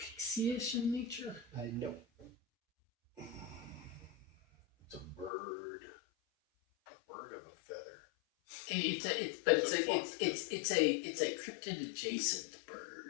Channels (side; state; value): right; drops out; at 5.3 s